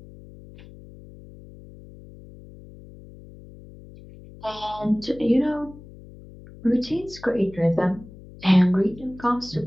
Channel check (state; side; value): noise; left; hum, 19 dB below the sound